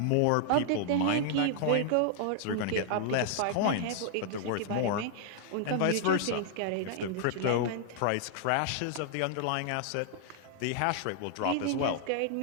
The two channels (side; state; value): both; different; correlation -0.01